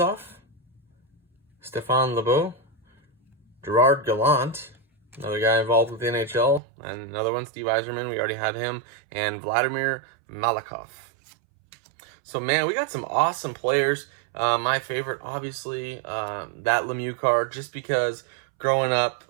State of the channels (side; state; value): left; drops out; at 6.6 s